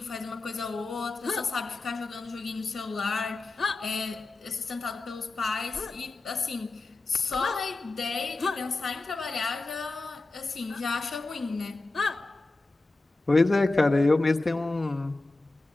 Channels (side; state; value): right; quieter; 3.2 dB